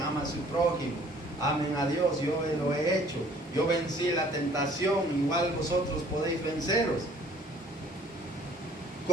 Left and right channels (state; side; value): normal; both; correlation 0.56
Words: ama a su prójimo, amen a Dios, yo lo he hecho, yo vencí la tentación, igual vosotros podéis venceros.